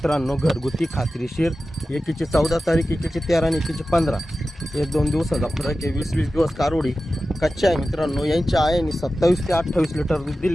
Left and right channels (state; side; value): normal; both; correlation 0.94